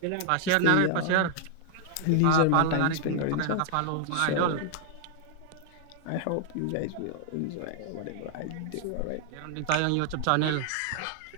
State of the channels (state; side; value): different; both; correlation 0.00